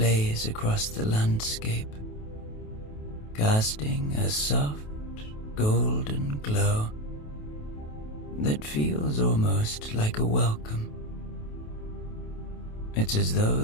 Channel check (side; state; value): right; late; 28 ms